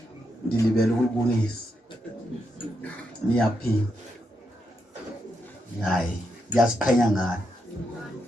ndilibele ukubonisa niyaphila. Hayi, ndiyaziqhenya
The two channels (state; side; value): normal; both; correlation 0.82